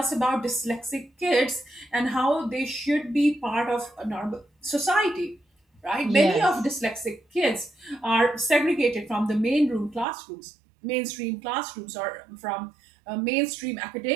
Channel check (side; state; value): left; drops out; at 10.1 s